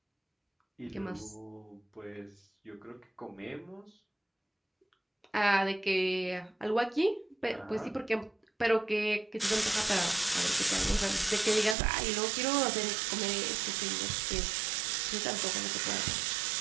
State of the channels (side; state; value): left; drops out; at 11.8 s